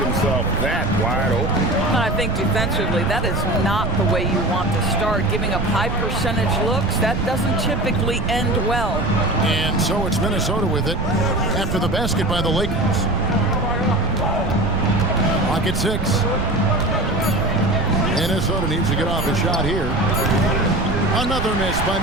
himself that wide open. I think defensively, that is not the way you want to start. Giving up high percentage looks, that doesn't typically end well. And so it's Minnesota with it after the basket by the Lakers. Clock at 6. Minnesota needs to get off a shot here. Another miss by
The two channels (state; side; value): noise; right; rumble, 3 dB below the sound